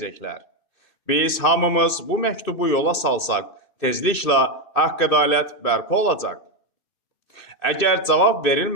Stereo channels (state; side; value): late; right; 2.6 ms